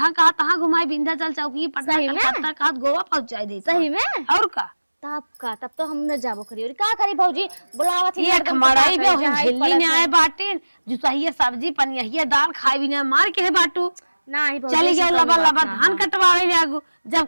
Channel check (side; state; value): both; inverted; correlation -1.00